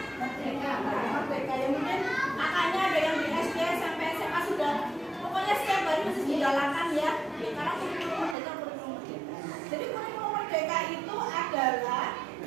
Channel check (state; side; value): drops out; left; at 8.3 s